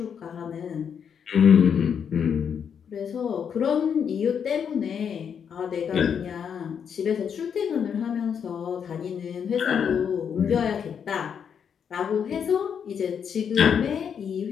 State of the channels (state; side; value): quieter; right; 7.5 dB